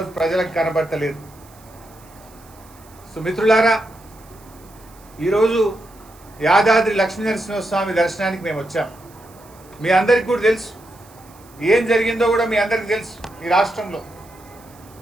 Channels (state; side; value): noise; right; hiss, 26 dB below the sound